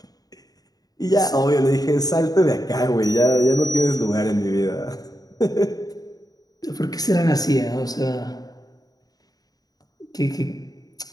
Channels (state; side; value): late; right; 0.18 ms